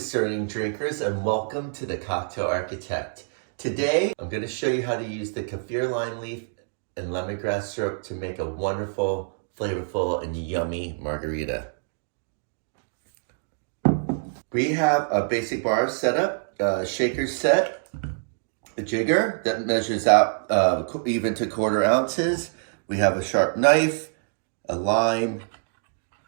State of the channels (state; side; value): silent; left; digital silence